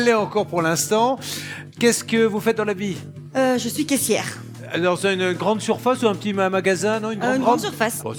l'est encore pour l'instant. Qu'est-ce que vous faites dans la vie? Je suis caissière. Dans une grande surface ou un petit magasin, non? Une grande surface. Bon,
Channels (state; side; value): identical; both; correlation 1.00